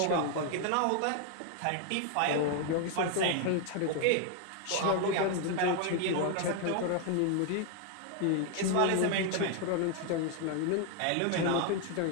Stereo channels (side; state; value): both; different; correlation 0.00